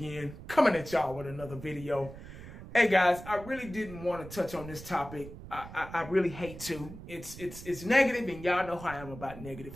coming at y'all with another video. Hey, guys, I really didn't want to touch on this topic. I really hate to. It's negative, and y'all know how I am about negative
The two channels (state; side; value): noise; right; rumble, 14 dB below the sound